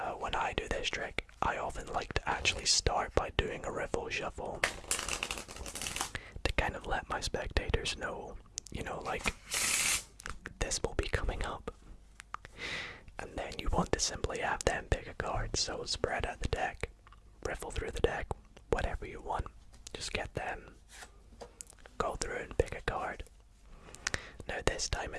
When I do this trick, I often like to actually start by doing a riffle shuffle to kind of let my spectators know, like, this will be coming up. And then you want to simply have them pick a card, so spread out the deck, riffle through the deck, whatever you want. Just get them, go through and pick a card. Now this time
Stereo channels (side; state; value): both; identical; correlation 1.00